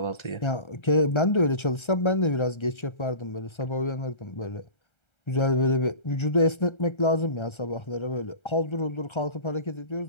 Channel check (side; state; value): right; late; 1.3 ms